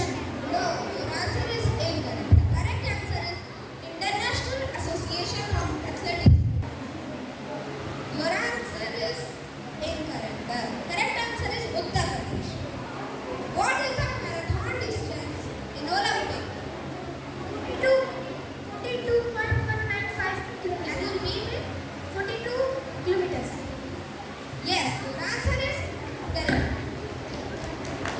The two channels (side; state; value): both; identical; correlation 1.00